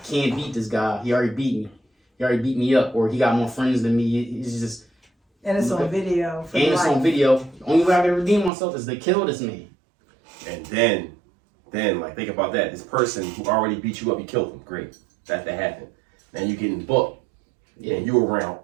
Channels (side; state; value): left; drops out; at 8.5 s